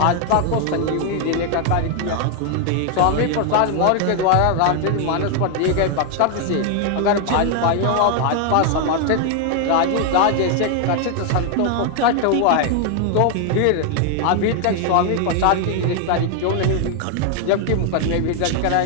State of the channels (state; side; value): different; both; correlation 0.00